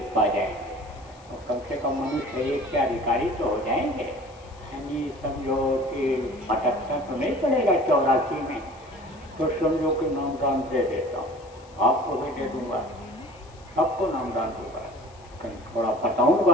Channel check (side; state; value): left; noise; hiss, 27 dB below the sound